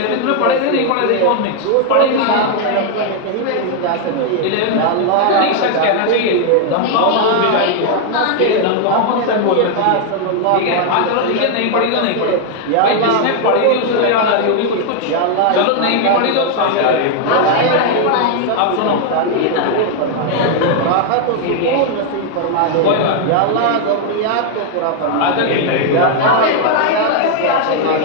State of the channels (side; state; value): both; different; correlation 0.00